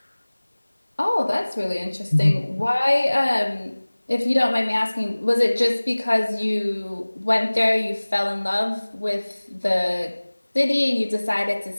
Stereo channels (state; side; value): inverted; both; correlation -1.00